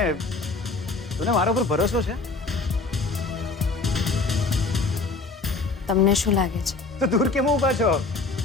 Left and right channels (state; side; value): quieter; right; 3.8 dB